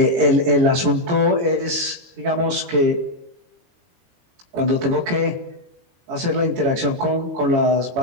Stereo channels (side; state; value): left; late; 22 ms